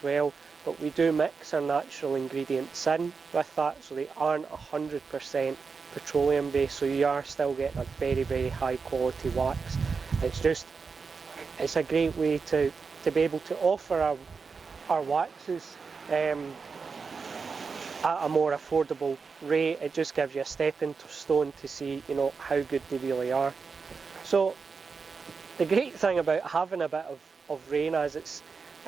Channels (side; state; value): left; quieter; 5.1 dB